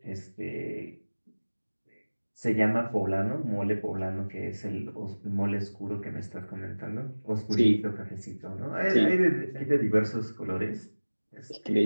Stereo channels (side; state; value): both; inverted; correlation -1.00